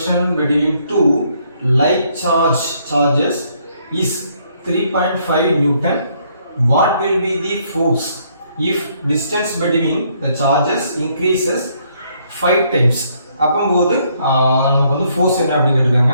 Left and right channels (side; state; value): both; inverted; correlation -0.69